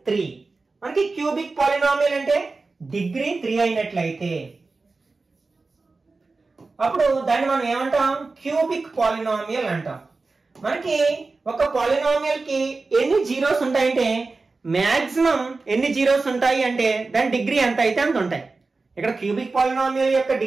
3. మనకి క్యూబిక్ పాలినామియల్ అంటే డిగ్రీ 3 అయినట్లయితే అప్పుడు దాన్ని మనం ఏమంటాం? క్యూబిక్ పాలినామియల్ అంటాం. మనకి ఒక పాలినామియల్ కి ఎన్ని జీరోస్ ఉంటాయంటే, మాక్సిమం ఎన్ని జీరోస్ ఉంటాయి అంటే దాని డిగ్రీ ఎంత అయితే అంత ఉంటాయి. ఇక్కడ క్యూబిక్ పాలినామియల్ యొక్క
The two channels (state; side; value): quieter; left; 3.8 dB